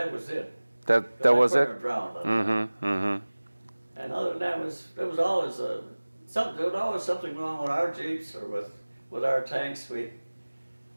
was it. that was it. Drowned. Mm-hmm. Mm-hmm. And other than that, there was always something wrong with our Jeeps or with our tanks.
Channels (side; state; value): both; inverted; correlation -1.00